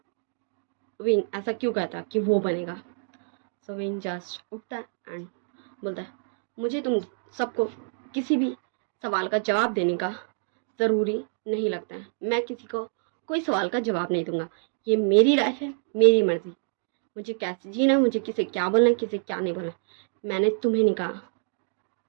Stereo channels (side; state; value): left; silent; digital silence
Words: विंग ऐसा क्यों कहता कि वो बनेगा। सो विंग जस्ट उठता है एंड बोलता है, मुझे तुम सबको किसी भी सवाल का जवाब देने का ज़रूरी नहीं लगता है, मैं किसी को कोई सवाल का जवाब नहीं दूंगा, ये मेरी लाइफ है, मेरी मर्जी, मुझे कैसे जीना, मुझे किसे क्या बोलना है किसे क्या नहीं बोलना, मैंने तुम्हें नहीं कहा।